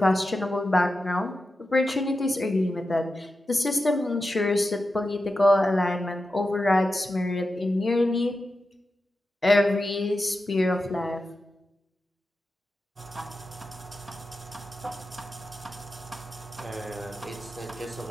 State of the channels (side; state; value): both; normal; correlation 0.91